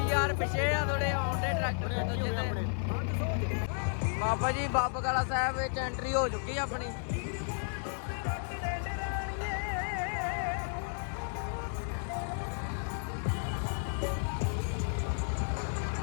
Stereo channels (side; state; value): right; silent; 56 dB below the other